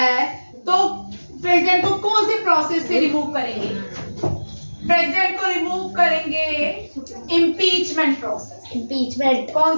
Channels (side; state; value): both; inverted; correlation -1.00